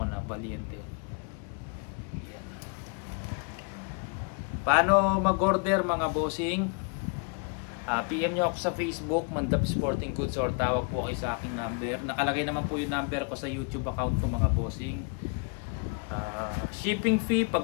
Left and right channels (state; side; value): quieter; right; 35.5 dB